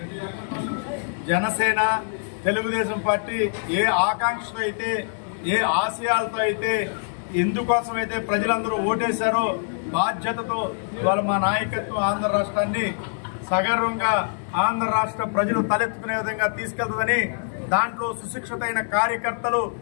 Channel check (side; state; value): right; silent; digital silence